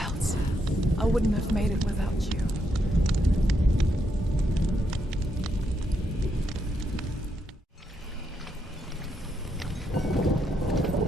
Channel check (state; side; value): normal; both; correlation 0.79